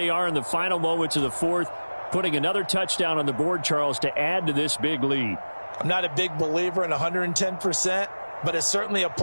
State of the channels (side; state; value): both; inverted; correlation -1.00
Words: are in the final moments of the fourth, putting another touchdown on the board, Charles, to add to this big lead. I'm not a big believer in 110%, but it certainly